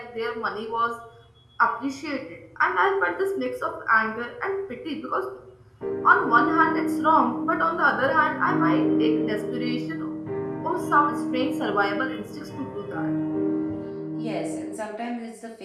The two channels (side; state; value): both; identical; correlation 1.00